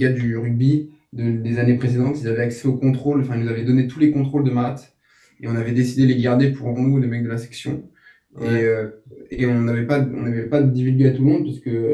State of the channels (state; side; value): identical; both; correlation 1.00